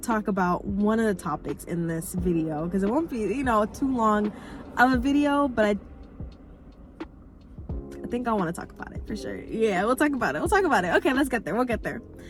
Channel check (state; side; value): identical; both; correlation 1.00